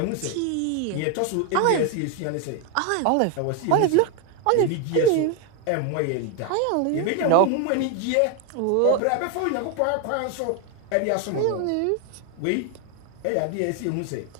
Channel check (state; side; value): different; both; correlation 0.01